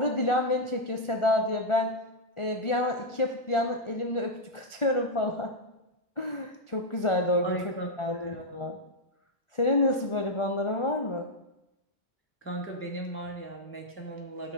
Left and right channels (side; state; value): right; late; 1.4 ms